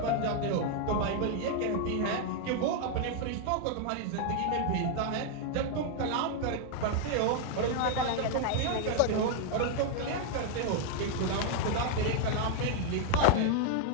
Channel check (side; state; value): both; different; correlation 0.00